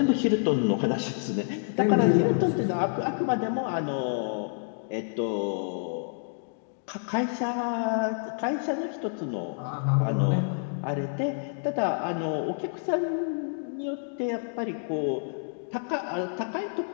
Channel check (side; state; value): right; silent; digital silence